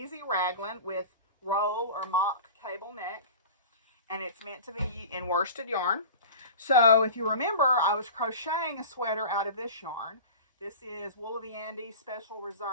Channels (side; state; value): both; inverted; correlation -0.36